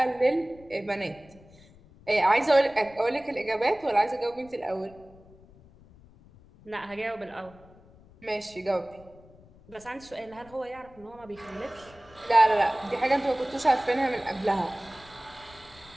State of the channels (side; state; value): left; noise; rumble, 24 dB below the sound